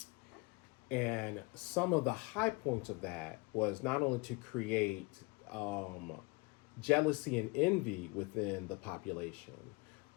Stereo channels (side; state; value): right; quieter; 27.2 dB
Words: And some of the high points of that was not only to create jealousy and envy within the population,